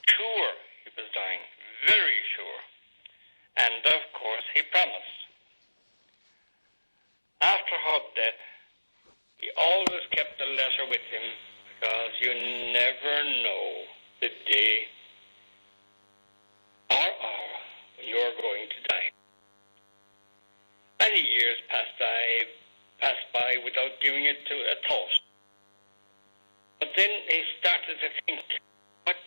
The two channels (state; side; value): inverted; both; correlation -1.00